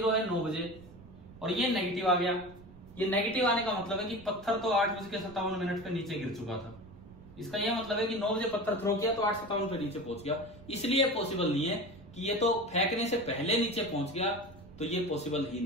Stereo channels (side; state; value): right; noise; rumble, 20 dB below the sound